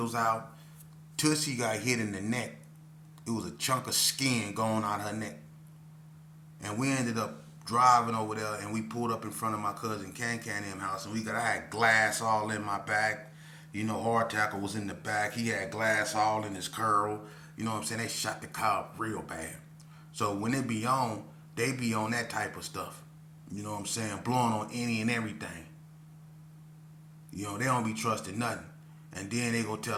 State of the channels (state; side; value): identical; both; correlation 1.00